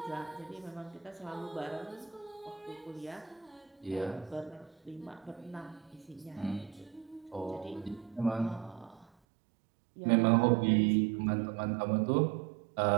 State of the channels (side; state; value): left; drops out; at 9.1 s